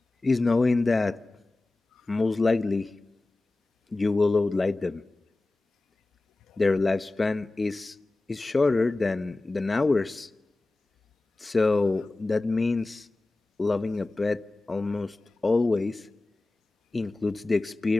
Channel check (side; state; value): right; quieter; 3.1 dB